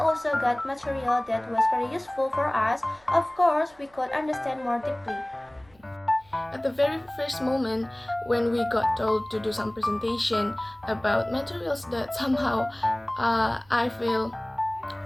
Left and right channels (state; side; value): noise; right; hum, 30 dB below the sound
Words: got material that was very useful for us. Of course, we could understand more deeply. At the very first moment when we got told to do some presentation about materials that somehow I feel